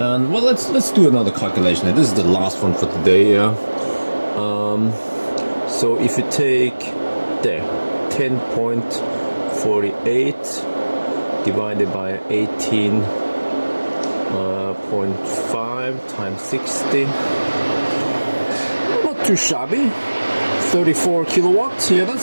and well, let's do another calculation. This is the last one for today. So if you take there 10.48 divided by 18.5 times 60, not too shabby. 34 kilowatts. Yeah,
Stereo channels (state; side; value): inverted; both; correlation -1.00